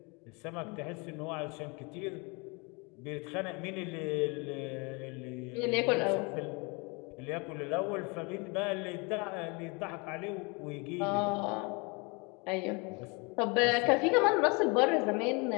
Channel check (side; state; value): right; quieter; 29.9 dB